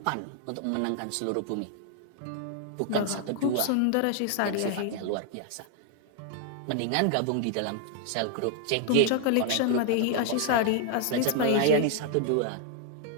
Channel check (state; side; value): different; both; correlation 0.00